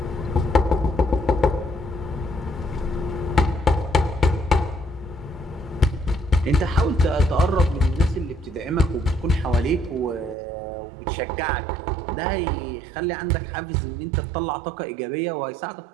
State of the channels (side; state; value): left; drops out; at 10.4 s